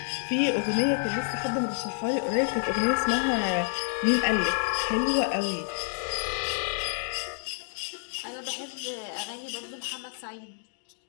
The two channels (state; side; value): silent; right; digital silence